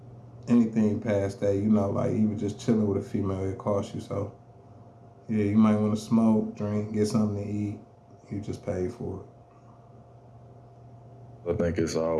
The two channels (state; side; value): identical; both; correlation 1.00